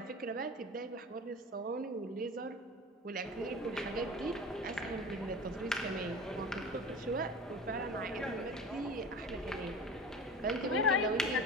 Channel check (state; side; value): normal; both; correlation 0.35